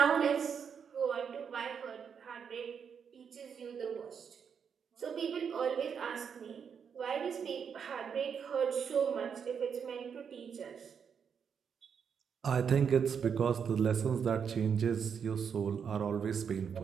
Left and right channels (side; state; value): left; quieter; 7.0 dB